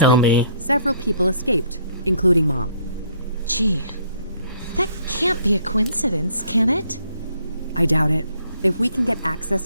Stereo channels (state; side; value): inverted; both; correlation -0.64